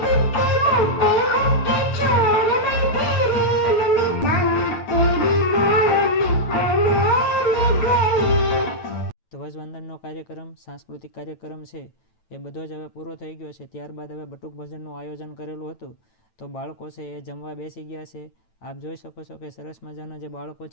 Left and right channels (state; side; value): late; right; 9.4 ms